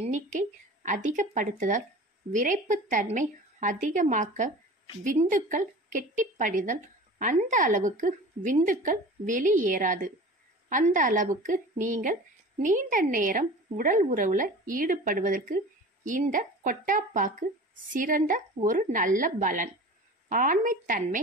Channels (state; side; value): normal; both; correlation 0.38